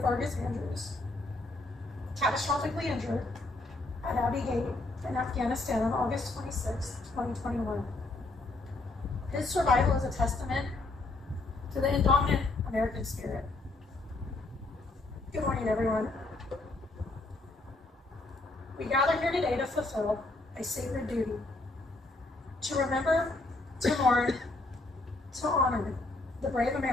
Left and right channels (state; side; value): quieter; right; 3.0 dB